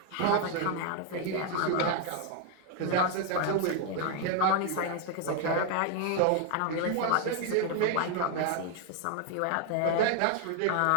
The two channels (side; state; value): both; different; correlation 0.00